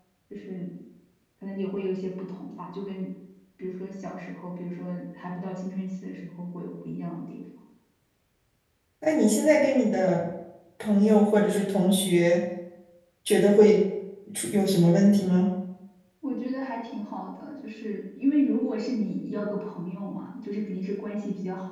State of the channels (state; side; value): identical; both; correlation 1.00